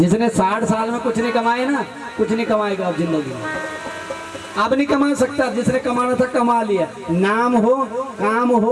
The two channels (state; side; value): identical; both; correlation 1.00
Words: 60 साल में कुछ नहीं कमाए ना, कुछ नहीं कमाएगा अब जिंदगी में। अब नहीं कमा सकता, जिसने कमाना था कमा लिया। नाम हो, काम